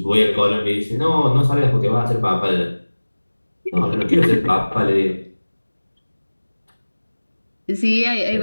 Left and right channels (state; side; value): inverted; both; correlation -1.00